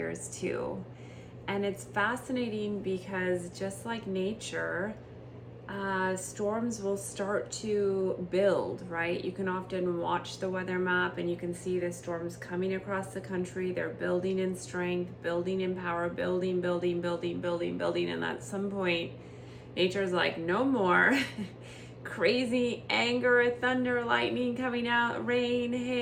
too. And it's fascinating because just like nature, storms will start to build, right? You can often watch the weather map and you can see the storms coming across the country. They're building in strength, building in power, building. And at some point, nature's like, no more. Crazy anger, thunder, lightning coming out, rain,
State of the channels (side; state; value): both; identical; correlation 1.00